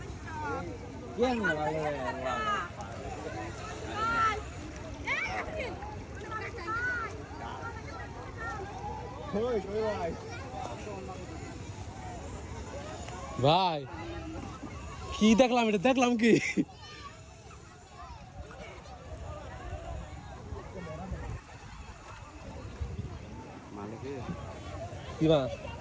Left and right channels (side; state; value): both; identical; correlation 1.00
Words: ভাই কি দেখলাম কি কি মাছ